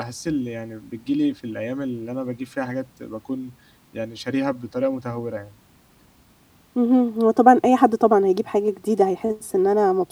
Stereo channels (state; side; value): identical; both; correlation 1.00